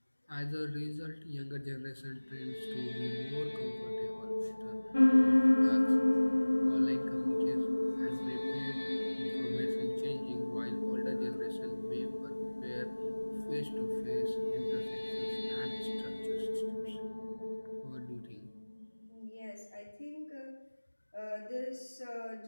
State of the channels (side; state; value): both; inverted; correlation -1.00